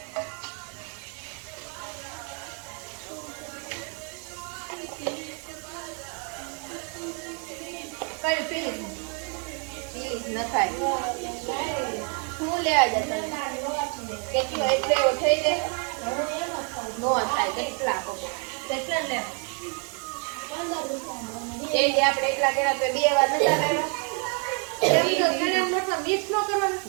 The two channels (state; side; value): quieter; left; 37.3 dB